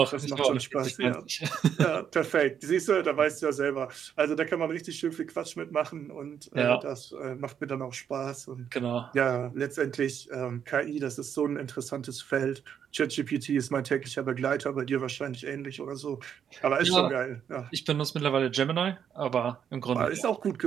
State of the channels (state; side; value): quieter; left; 8.3 dB